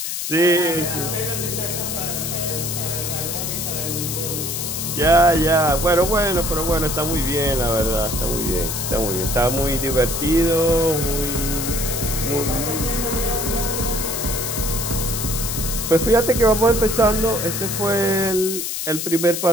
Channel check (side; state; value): left; noise; hiss, 3 dB below the sound